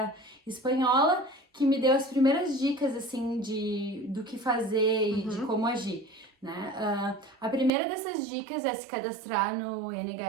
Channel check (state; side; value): drops out; left; at 7.7 s